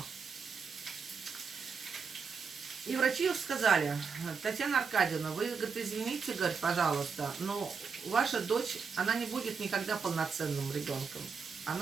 И врачи сказали, Татьяна Аркадьевна, вы, говорит, извините, говорит, пожалуйста, но ваша дочь, она не будет никогда полноценным ребенком.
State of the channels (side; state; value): left; quieter; 5.5 dB